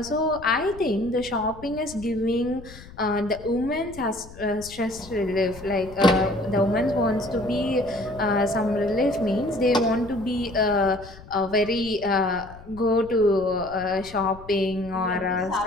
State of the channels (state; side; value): noise; left; rumble, 18 dB below the sound